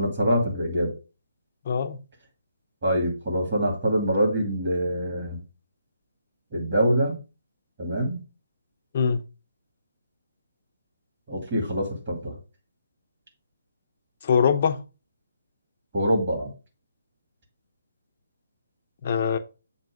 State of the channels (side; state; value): both; inverted; correlation -0.75